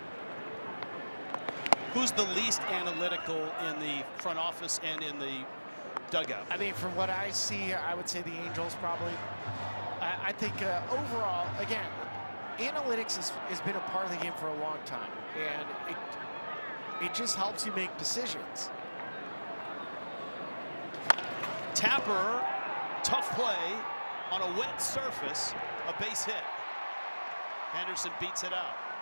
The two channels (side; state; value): both; inverted; correlation -1.00